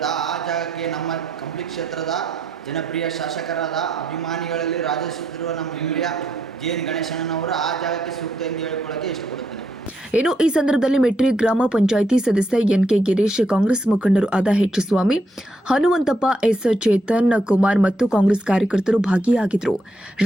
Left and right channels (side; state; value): both; normal; correlation 0.77